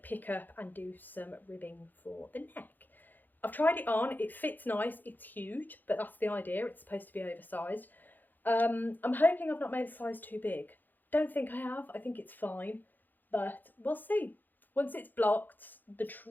pick up and do some ribbing for the neck. I've tried it on, it fits nice, it's huge, but that's the idea, it's supposed to be oversized. I'm hoping I've not made a size too big. Don't think I have, I think it's fine, but we'll see. Once it's blocked, the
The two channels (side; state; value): right; late; 0.087 ms